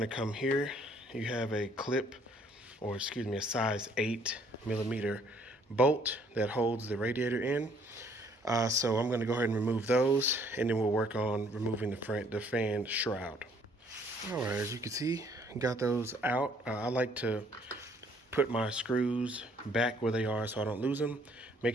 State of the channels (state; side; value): normal; both; correlation 0.62